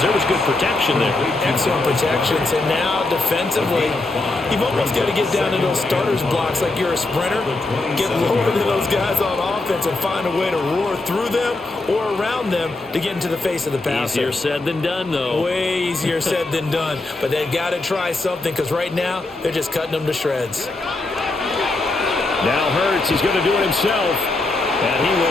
There was good protection there. Excellent protections. And now, defensively, you've almost got to get down to those starters blocks like you're a sprinter. Get lower than those guys on offense and find a way to roar through them or around them to get into the face of the passer. Easier said than done, though. Way easier said than done. But they've got to try something because right now, they're just cutting them to shreds. Now Hurts, he's going to do it himself. And he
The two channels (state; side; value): quieter; right; 3.1 dB